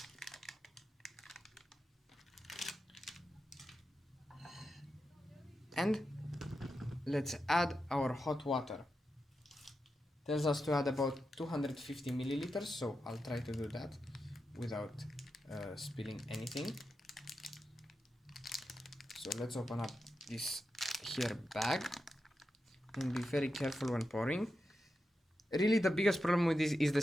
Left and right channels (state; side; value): normal; both; correlation 0.89